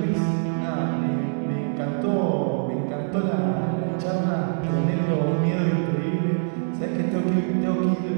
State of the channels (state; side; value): silent; left; 62 dB below the other